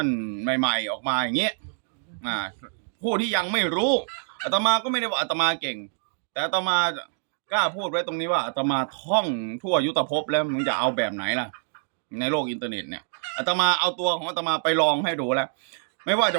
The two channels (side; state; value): left; silent; digital silence